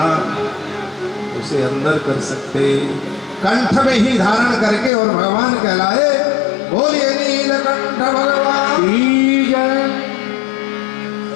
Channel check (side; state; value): right; drops out; at 4.9 s